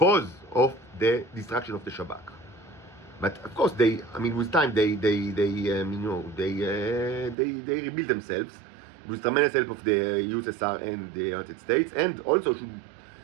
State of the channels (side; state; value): left; drops out; at 7.4 s